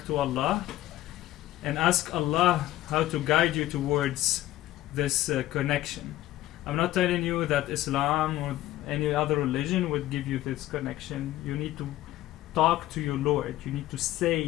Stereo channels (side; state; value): right; quieter; 15.0 dB